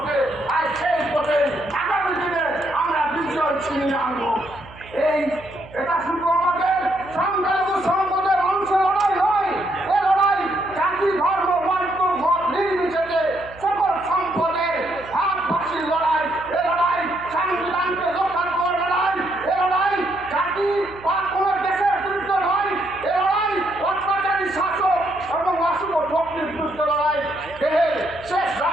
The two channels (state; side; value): noise; right; hum, 20 dB below the sound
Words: আর সেই পথে আগামী দিনে আমরা বিজয় ছিনিয়ে আনবো। এটা শুধু আমাদের সংখ্যালঘু সম্পদের মানুষের লড়াই নয়, এ লড়াই জাতি ধর্ম বর্ণ মত নির্বিশেষে সকল সম্পদের ভাগবাসীর লড়াই। এ লড়াই সংবিধানকে রক্ষা করার লড়াই। এ লড়াই জাতি বা কোনো দেশের বিরুদ্ধে নয়। এ লড়াই অত্যাচারী শাসক এবং অশুভ শক্তির বিরুদ্ধে লড়াই। দেহের শেষ